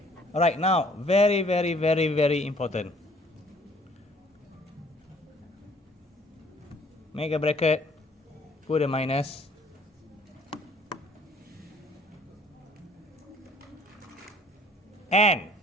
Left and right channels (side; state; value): both; normal; correlation 0.58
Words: Alright, now, very, very, very, very important. Make a bracket, put a minus. And